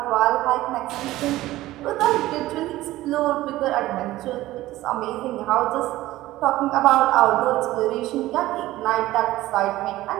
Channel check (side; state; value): left; quieter; 16.4 dB